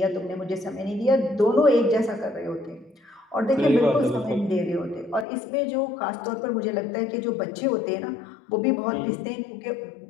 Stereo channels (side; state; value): right; drops out; at 5.2 s